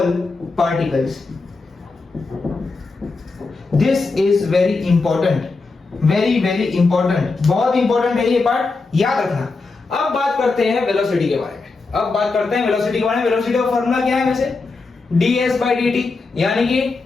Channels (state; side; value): quieter; right; 3.9 dB